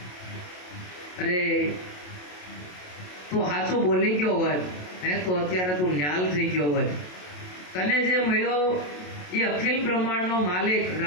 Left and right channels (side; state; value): right; late; 27 ms